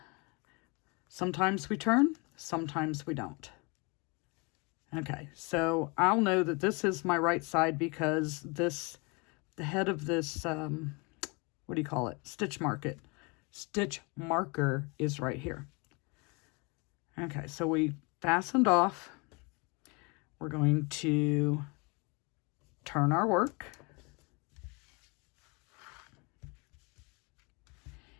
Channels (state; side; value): quieter; right; 29.7 dB